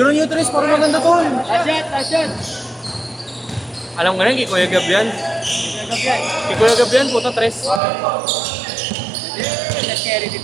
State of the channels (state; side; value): drops out; left; at 7.8 s